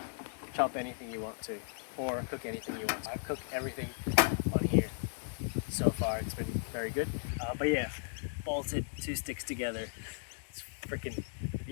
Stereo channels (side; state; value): right; silent; digital silence